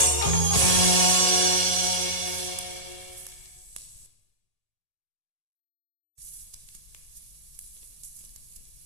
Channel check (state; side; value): late; left; 1.8 ms